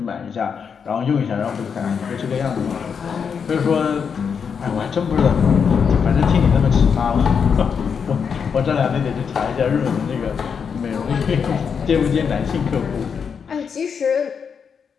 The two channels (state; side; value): quieter; right; 6.5 dB